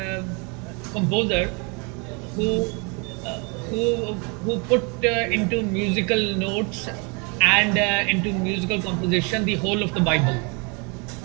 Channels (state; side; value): quieter; left; 32.2 dB